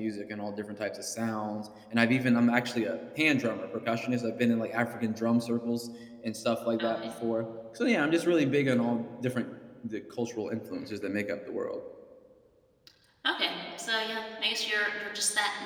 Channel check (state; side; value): identical; both; correlation 1.00